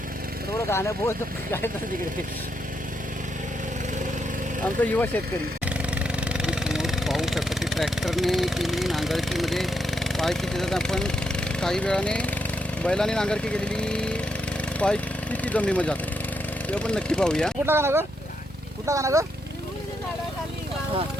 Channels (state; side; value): normal; both; correlation 0.80